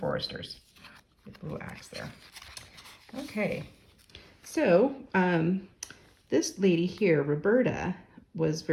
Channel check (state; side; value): identical; both; correlation 1.00